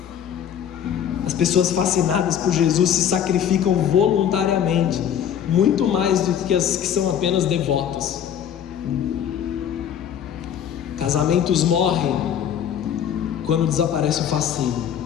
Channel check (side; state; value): right; quieter; 9.2 dB